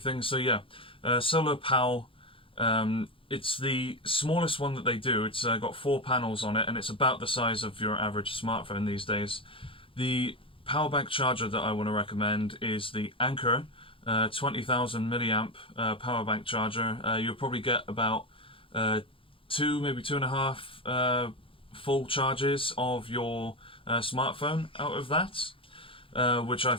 so yeah. Solar Pal, it's the smallest one that they do. It's got 4 panels on it, and it's about the size of your average smartphone these days. The power bank charger that I want to recommend is the Anker 20,000 milliamp power bank charger. You'll probably get about 2, maybe 2.5 full charges of your smartphone out of that, which I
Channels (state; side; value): late; right; 0.26 ms